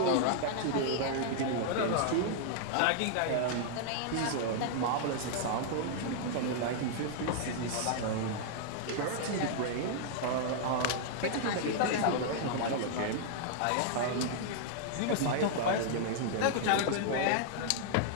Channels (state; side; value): different; both; correlation -0.01